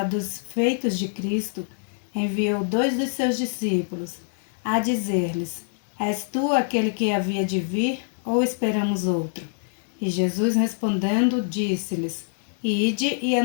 dos feitos de Cristo, enviou 2 dos seus discípulos, a dizer-lhes: És tu aquele que havia de vir, ou esperamos outro? E Jesus respondendo, disse-lhes: Ide e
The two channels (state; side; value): silent; right; 62 dB below the other